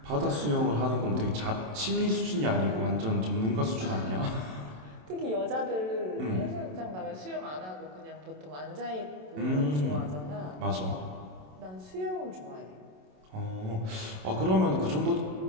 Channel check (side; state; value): left; late; 27 ms